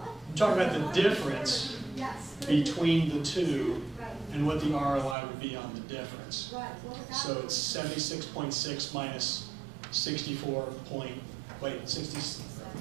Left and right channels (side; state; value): left; drops out; at 5.2 s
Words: I'm talking about the difference Yes. between the two Right, and what the ROI would be on the difference. right. What would that So be? it's 76.6 minus 64 point, wait, 60,